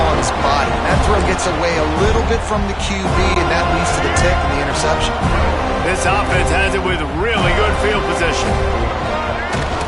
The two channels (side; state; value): both; identical; correlation 1.00